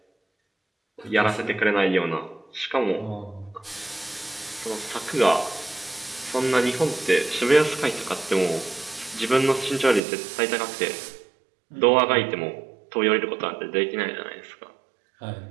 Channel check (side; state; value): left; drops out; at 10.0 s